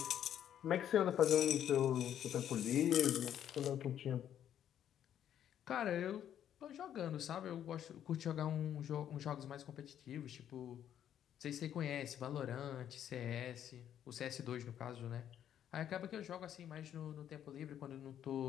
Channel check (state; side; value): quieter; right; 10.2 dB